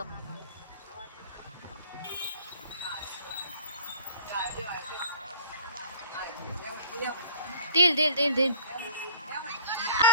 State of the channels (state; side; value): inverted; both; correlation -0.48